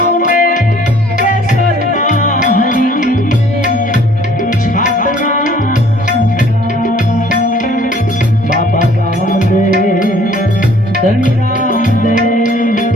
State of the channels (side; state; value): both; normal; correlation 0.57